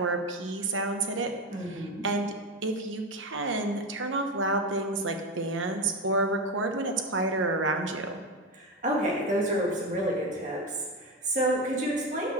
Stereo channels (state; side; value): normal; both; correlation 0.17